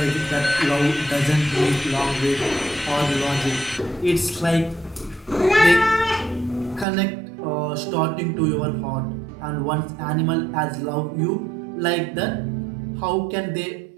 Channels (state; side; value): drops out; left; at 6.9 s